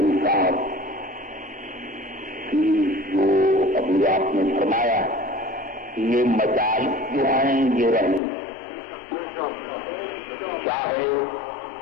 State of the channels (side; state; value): right; drops out; at 8.2 s